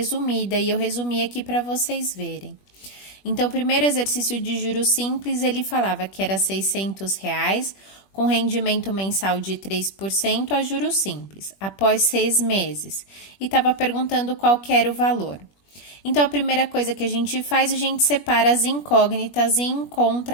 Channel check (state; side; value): late; right; 21 ms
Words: e eu resumi aqui para vocês verem. Então, o primeiro exercício de juros simples, ele falava que era R$ 600, com rendimento mensal de 3% a juros simples, após 6 meses, e estava perguntando qual que era o valor. Então, a primeira coisa que a gente faz, a gente separa as incógnitas e